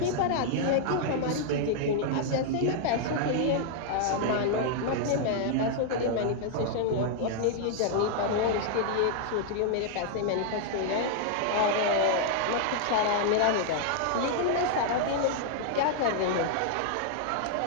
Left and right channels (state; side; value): different; both; correlation -0.01